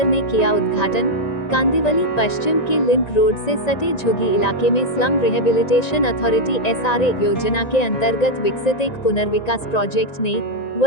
ने किया उद्घाटन। कांदिवली पश्चिम के लिंक रोड से सटे झुग्गी इलाके में स्लम रिहेबिलिटेशन अथॉरिटी एसआरए योजना के अंतर्गत विकसित एक पुनर्विकास प्रोजेक्ट ने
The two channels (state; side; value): late; right; 1.9 ms